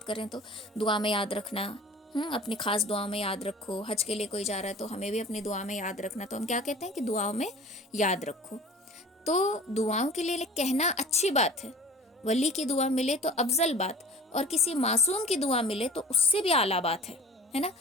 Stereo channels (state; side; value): normal; both; correlation 0.42